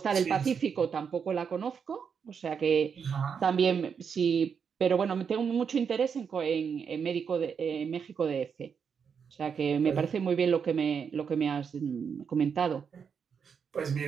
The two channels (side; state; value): left; quieter; 6.6 dB